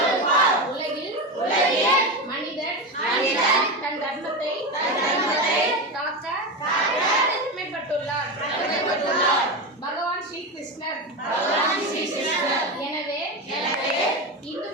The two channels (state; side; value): normal; both; correlation 0.18